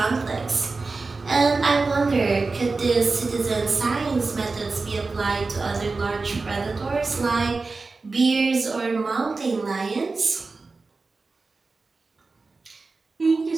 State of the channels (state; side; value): quieter; left; 3.9 dB